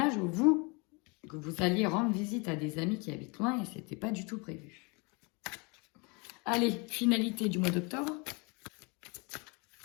ou vous, que vous alliez rendre visite à des amis qui habitent loin et ce n'était pas du tout prévu. Allez, finalité du mois d'octobre.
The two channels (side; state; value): right; quieter; 30.1 dB